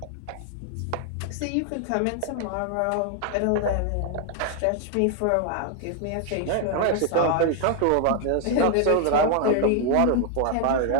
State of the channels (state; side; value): different; both; correlation 0.00